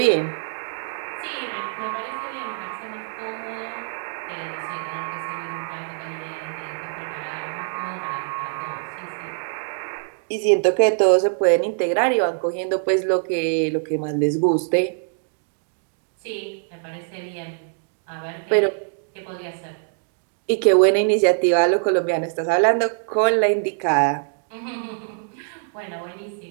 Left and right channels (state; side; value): silent; left; digital silence